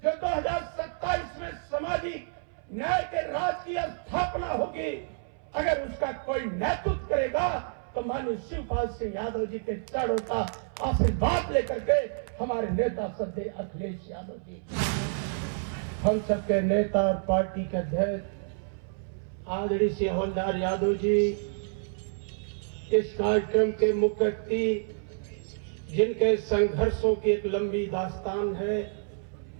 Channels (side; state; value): left; silent; 59 dB below the other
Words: जो 2027 में सामाजिक न्याय के राज की स्थापना होगी, अगर उसका कोई नेतृत्व करेगा तो माननीय शिवपाल सिंह यादव जी के चरणों का आशीर्वाद लेकर के हमारे नेता सदैव अखिलेश यादव जी, हम सबके नेता और पार्टी के अध्यक्ष आदरणीय श्री हवलदार यादव जी, इस कार्यक्रम के मुख्य अतिथि जिनके संघर्षों की एक लंबी दास्तान है,